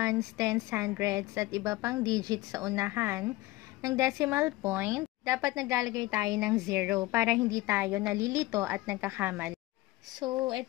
tens, hundreds at iba pang digits sa unahan ng decimal point, dapat naglalagay tayo ng 0 para hindi tayo nalilito at nagkakamali. So,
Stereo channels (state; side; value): quieter; right; 19.1 dB